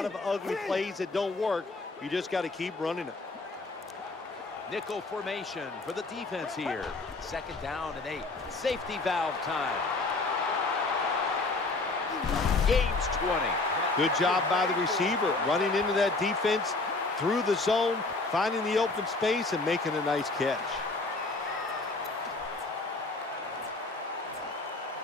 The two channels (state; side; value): quieter; right; 3.4 dB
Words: of ugly plays that don't work. You just got to keep running it. Nickel formation for the defense here. 2nd down and 8. Safety valve time. Gains 20. Good job by the receiver, running into that defense through the zone, finding the open space and making a nice catch.